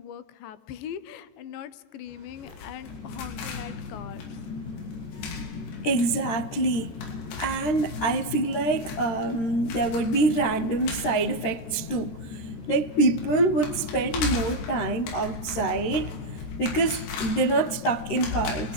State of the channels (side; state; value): right; late; 13 ms